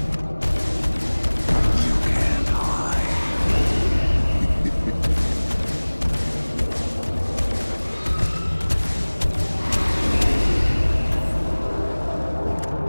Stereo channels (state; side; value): inverted; both; correlation -1.00